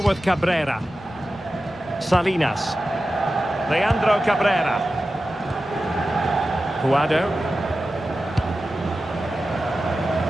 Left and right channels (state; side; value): noise; left; hum, 27 dB below the sound